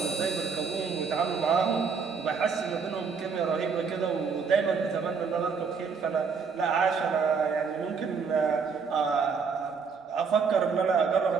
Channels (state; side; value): quieter; left; 5.6 dB